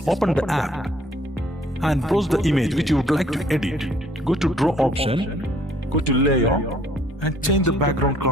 open the app and browse the image which you would like to edit. Go to Draw option, go to Layer and change the background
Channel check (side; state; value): both; normal; correlation 0.61